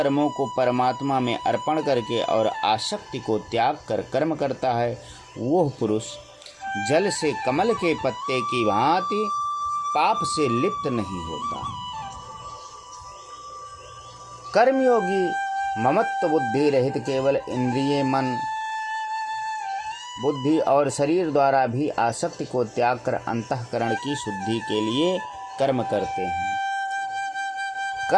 को परमात्मा में अर्पण करके और आसक्ति को त्याग कर कर्म करता है, वह पुरुष जल से कमल के पत्ते की भांति पाप से लिप्त नहीं होता। कर्मयोगी ममत्व बुद्धि रहित केवल इंद्रिय, मन, बुद्धि और शरीर द्वारा भी आसक्ति को त्याग कर अंतःकरण की शुद्धि के लिए कर्म करते हैं।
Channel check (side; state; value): both; identical; correlation 1.00